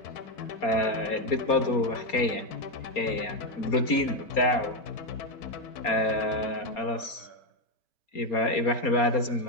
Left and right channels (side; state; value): right; late; 4.3 ms